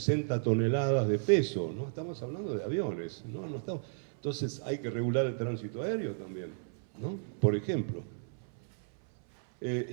toneladas de peso, ¿no? Estamos hablando de aviones, ¿no? Entonces hay que regular el tránsito aéreo también, ¿no? Por ejemplo.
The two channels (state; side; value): silent; left; 56 dB below the other